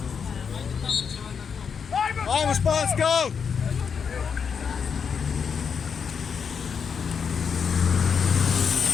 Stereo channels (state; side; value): quieter; right; 6.5 dB